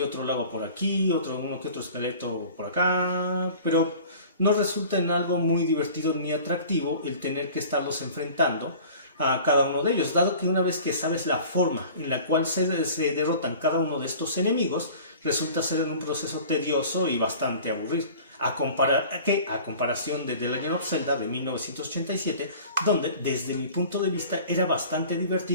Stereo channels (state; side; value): inverted; both; correlation -0.43